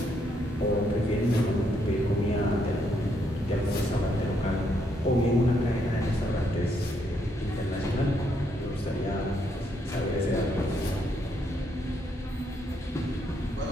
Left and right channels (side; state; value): both; normal; correlation 0.75